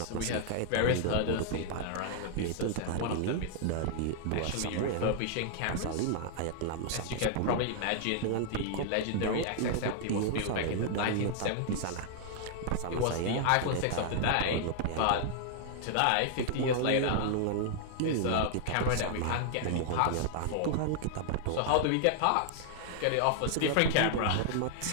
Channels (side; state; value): both; different; correlation -0.01